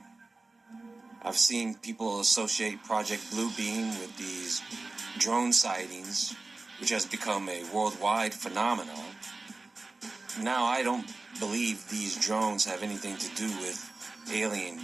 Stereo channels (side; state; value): left; quieter; 3.4 dB